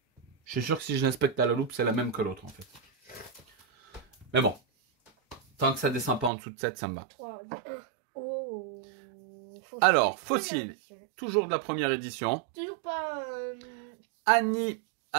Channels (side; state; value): left; drops out; at 6.3 s